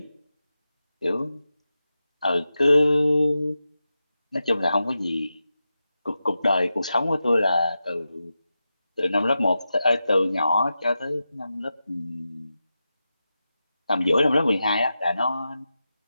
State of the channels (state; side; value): inverted; both; correlation -0.91